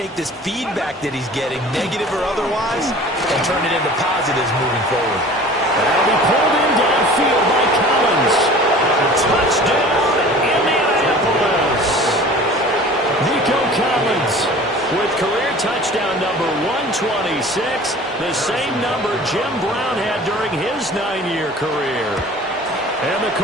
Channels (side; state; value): both; normal; correlation 0.44